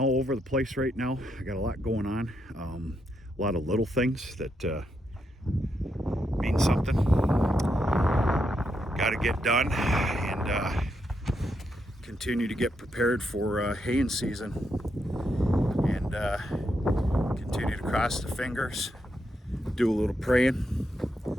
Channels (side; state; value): both; normal; correlation 0.81